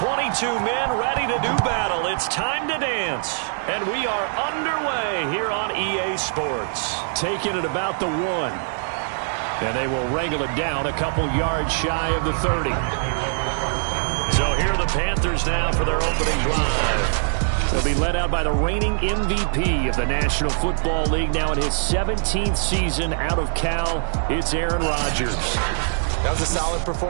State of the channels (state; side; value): silent; left; 60 dB below the other